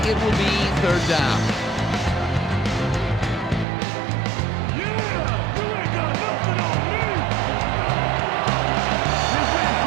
It will be third down.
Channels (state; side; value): drops out; left; at 3.7 s